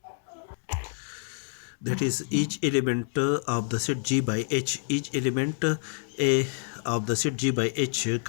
That is, each element of the set G by H, each element A of the set G by H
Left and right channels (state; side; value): silent; right; 59 dB below the other